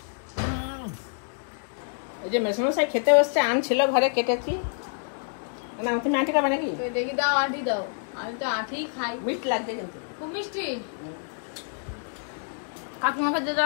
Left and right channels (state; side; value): silent; right; digital silence